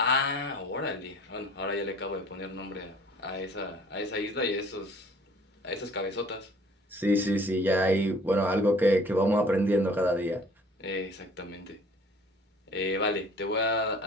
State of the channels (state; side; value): normal; both; correlation 0.52